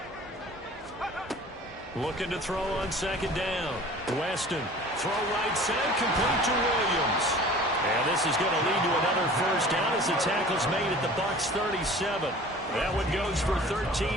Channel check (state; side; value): normal; both; correlation 0.45